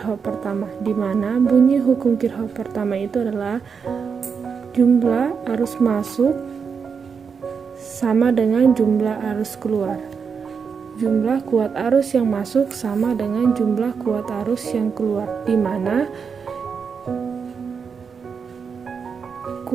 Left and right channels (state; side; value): quieter; left; 6.0 dB